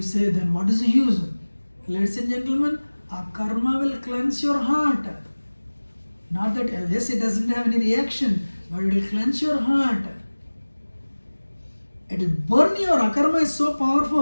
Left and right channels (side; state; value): both; inverted; correlation -1.00